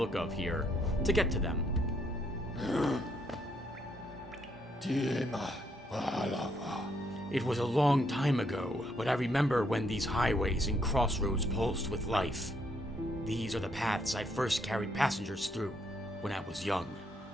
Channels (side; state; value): both; normal; correlation 0.73